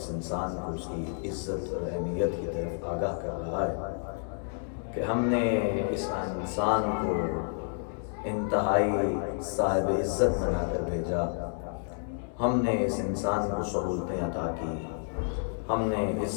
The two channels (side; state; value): right; silent; digital silence